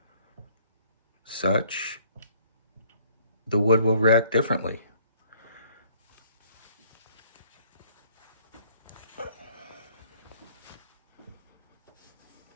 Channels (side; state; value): both; inverted; correlation -0.62